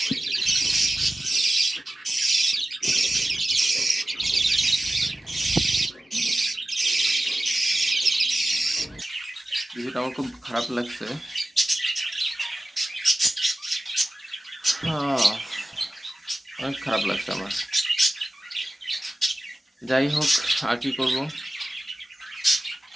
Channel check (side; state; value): both; normal; correlation 0.95